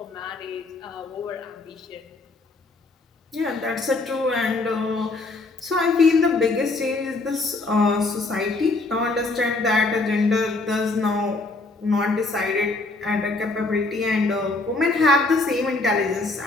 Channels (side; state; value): right; quieter; 3.3 dB